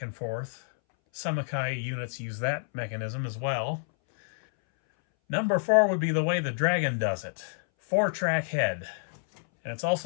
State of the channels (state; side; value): silent; right; 59 dB below the other